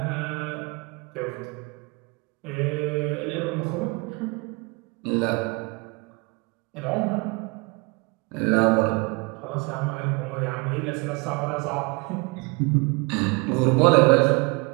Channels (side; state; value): left; quieter; 28.4 dB